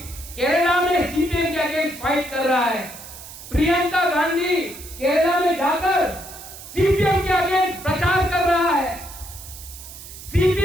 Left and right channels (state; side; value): noise; right; hiss, 15 dB below the sound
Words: केरला में सीपीएम के अगेंस्ट फाइट कर रहा है। प्रियंका गांधी केरला में जाकर सीपीएम के अगेंस्ट प्रचार कर रहा है।